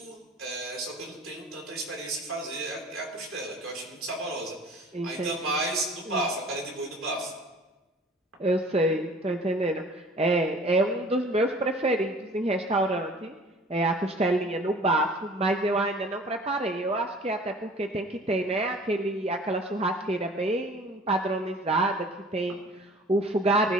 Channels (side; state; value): both; normal; correlation 0.48